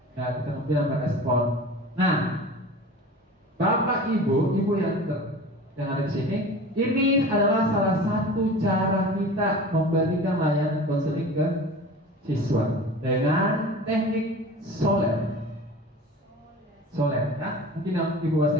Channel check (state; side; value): normal; both; correlation 0.38